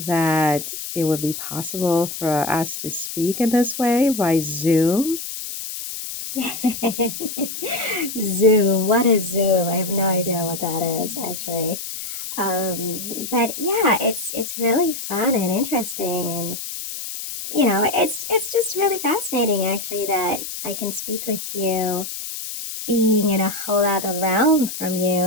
that it would be possible for us to speak in this way by Zoom? Zoom, what is Zoom? I have no idea what that is actually. But yeah, it's really fun and interesting, and it's just really fascinating actually that I can speak with you, being in a whole other realm from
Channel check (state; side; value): noise; left; hiss, 7 dB below the sound